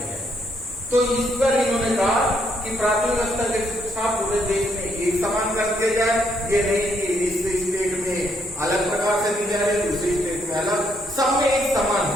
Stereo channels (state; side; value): normal; both; correlation 0.73